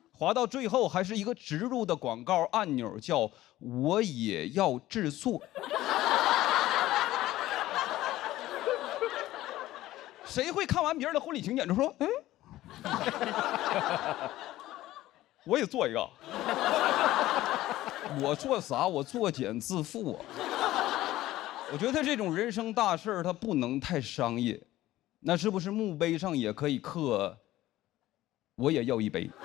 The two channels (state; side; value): quieter; right; 15.6 dB